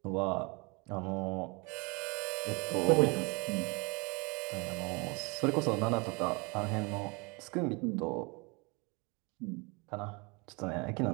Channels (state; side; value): quieter; left; 29.4 dB